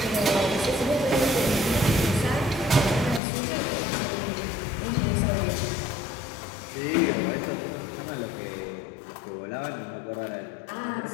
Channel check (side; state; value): right; drops out; at 3.2 s